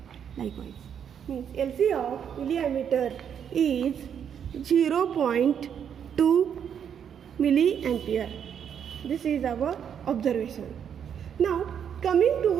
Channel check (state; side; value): quieter; left; 8.3 dB